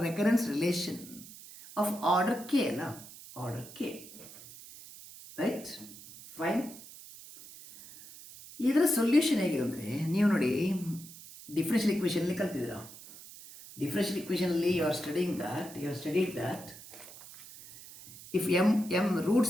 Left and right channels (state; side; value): noise; right; hiss, 17 dB below the sound